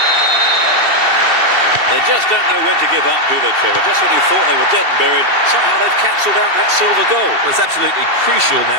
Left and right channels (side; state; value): left; late; 2.7 ms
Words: They just don't know when to give up, do they, Trevor? Just when you thought they were dead and buried, somehow they've cancelled out that silver goal. Well, it's absolutely crucial